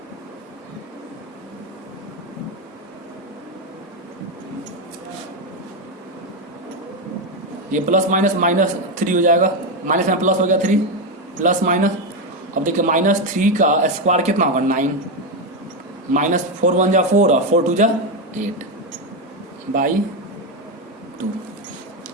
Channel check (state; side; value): normal; both; correlation 0.09